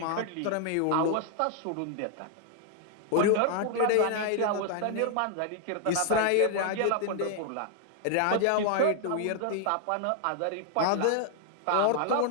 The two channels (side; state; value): both; different; correlation 0.00